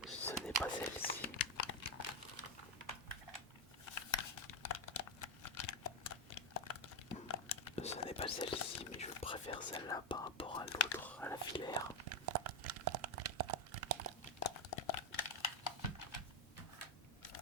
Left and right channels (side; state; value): both; normal; correlation 0.06